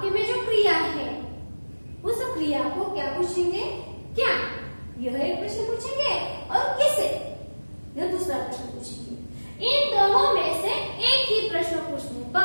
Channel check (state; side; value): inverted; both; correlation -1.00